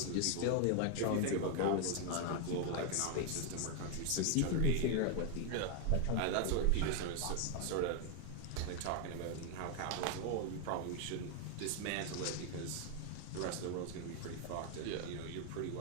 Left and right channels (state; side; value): different; both; correlation 0.01